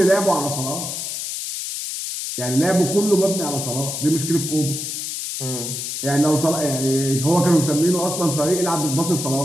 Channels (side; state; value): left; noise; hiss, 5 dB below the sound